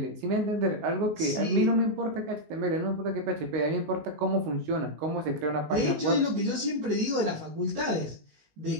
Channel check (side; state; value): left; late; 19 ms